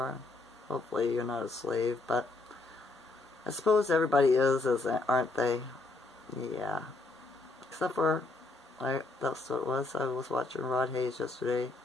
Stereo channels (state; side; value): quieter; right; 3.3 dB